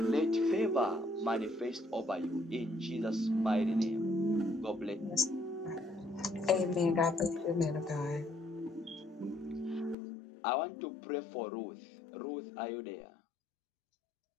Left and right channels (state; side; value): drops out; right; at 10.0 s